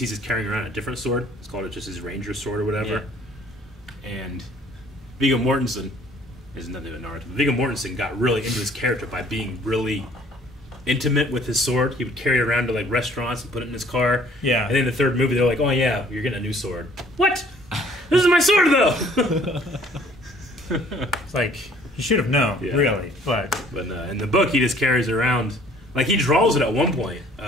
just carrying around a different sword. It's called just his ranger sword or whatever. Yeah. And Viggo Mortensen is nothing but Naruto. Viggo Mortensen got really into his character by being really intimate with his sword. He would carry it around to like restaurants and put it in his car. Yeah. And then in the third movie, they're like, "Oh yeah, you're getting a new sword." What? This is my sword though. It's like you should have known, really. But in the book, he just carries it around. Like he draws it at one point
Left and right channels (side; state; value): both; normal; correlation 0.57